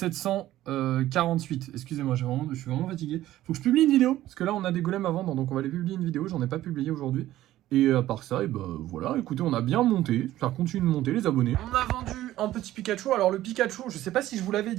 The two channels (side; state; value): left; quieter; 14.4 dB